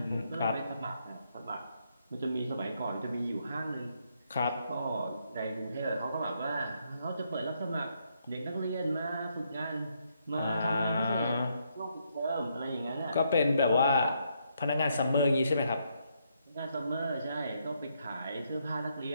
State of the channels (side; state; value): both; inverted; correlation -0.76